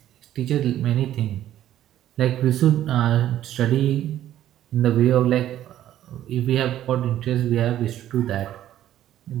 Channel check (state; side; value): quieter; left; 12.3 dB